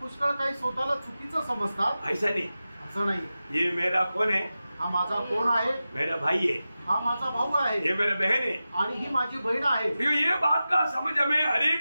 काही स्वतःला चुकीचं समजतात। ऐसा नहीं, असं नाही। ये मेरा कौन है? हा माझा कोण आहे? मेरा भाई है। हा माझा भाऊ आहे। ये मेरा बहन है। आणि ही माझी बहीण आहे। ये बात का समझ हमें हर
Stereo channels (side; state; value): both; inverted; correlation -0.94